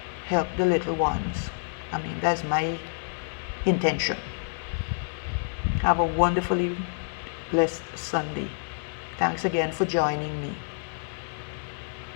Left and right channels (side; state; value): right; silent; 59 dB below the other